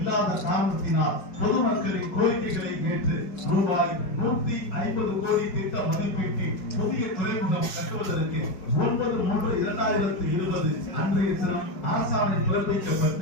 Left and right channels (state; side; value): late; right; 5.1 ms